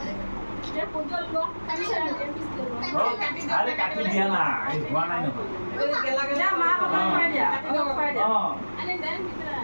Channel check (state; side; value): inverted; both; correlation -1.00